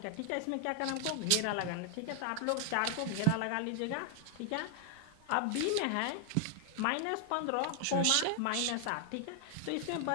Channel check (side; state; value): both; different; correlation 0.00